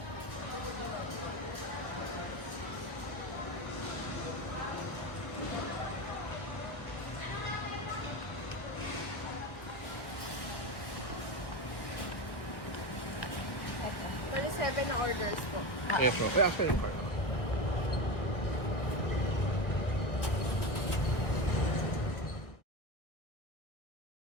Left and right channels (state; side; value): late; right; 1.1 ms